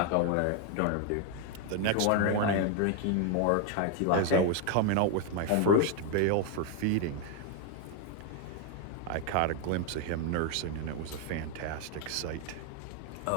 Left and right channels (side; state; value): both; different; correlation 0.01